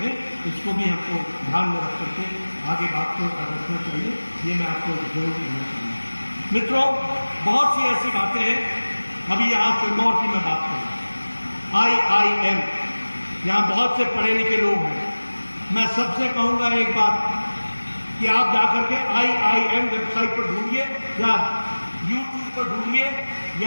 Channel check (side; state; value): both; inverted; correlation -1.00